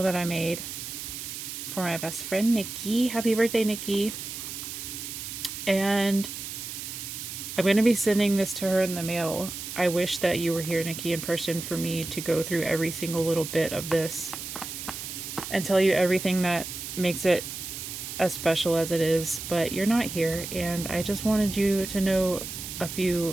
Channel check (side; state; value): right; noise; hiss, 8 dB below the sound